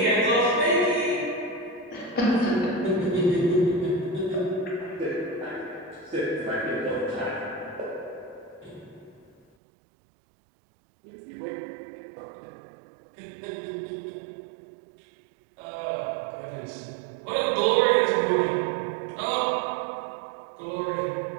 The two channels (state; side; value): drops out; left; at 9.4 s